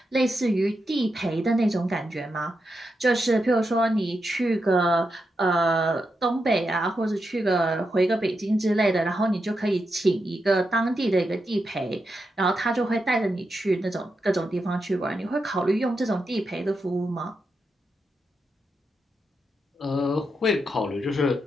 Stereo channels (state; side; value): normal; both; correlation 0.86